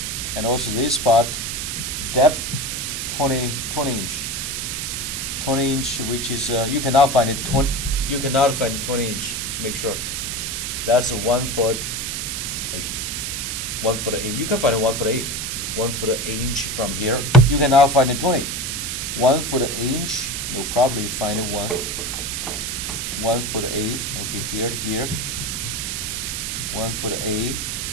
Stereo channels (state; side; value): noise; right; hiss, 3 dB below the sound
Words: and also this spot, depth 20 inch. 20 inch, which is you cannot find it 20. You cannot find it 20 inch. Make sure that's a 1 foot 8. 1 foot 8. You can find it 1 foot 8. 1 foot 8 inch from here. You cannot find it 20. 1 foot 8 inch. No problem. You find it 1 foot 8. Okay, here. 1 foot 8.